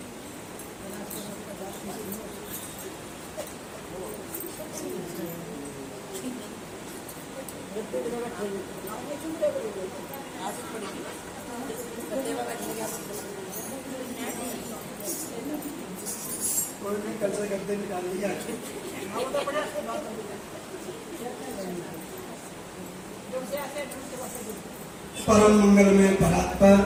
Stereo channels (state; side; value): identical; both; correlation 1.00